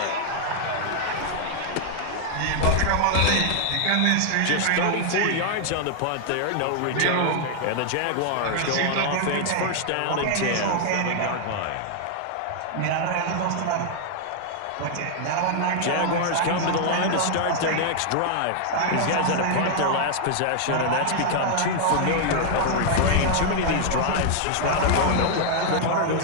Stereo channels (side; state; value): both; different; correlation 0.00